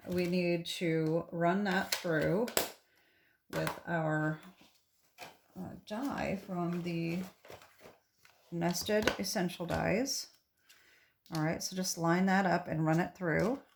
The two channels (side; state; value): both; identical; correlation 1.00